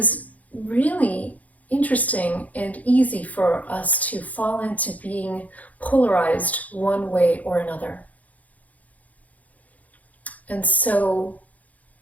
really interesting and easy for us to fall into being polarized one way or another. And so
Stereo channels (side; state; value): right; late; 0.074 ms